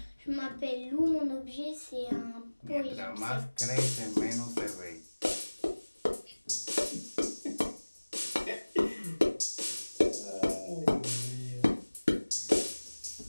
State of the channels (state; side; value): inverted; both; correlation -1.00